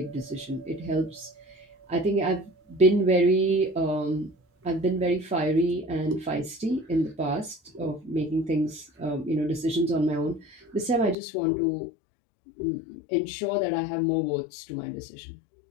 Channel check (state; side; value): drops out; right; at 11.2 s